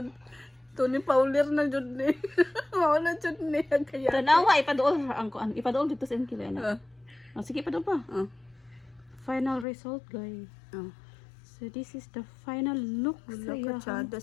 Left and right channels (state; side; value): drops out; right; at 9.7 s